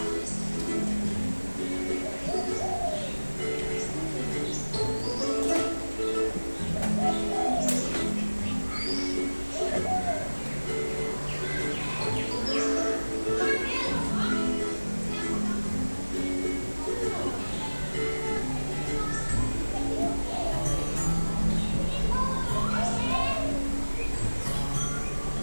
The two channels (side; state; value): both; inverted; correlation -1.00